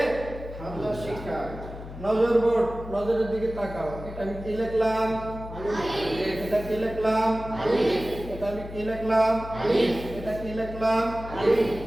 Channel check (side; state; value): left; noise; hum, 12 dB below the sound